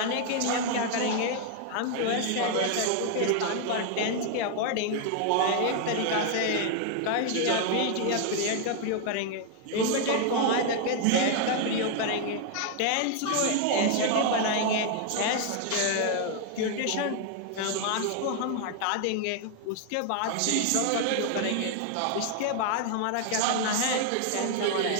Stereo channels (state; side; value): different; both; correlation 0.00